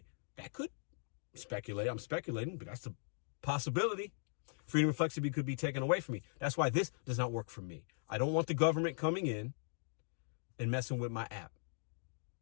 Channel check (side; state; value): right; silent; digital silence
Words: That could speculate. I'm speculating, but that's a possibility. Freedom and flexibility could be taken away from me. That's why this does not work for me. I don't want the government coming in and messing with my app.